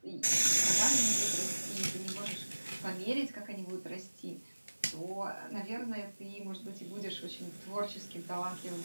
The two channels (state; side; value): inverted; both; correlation -1.00